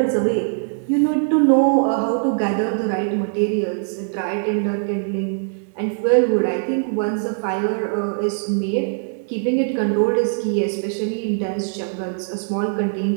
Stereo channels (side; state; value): left; silent; 65 dB below the other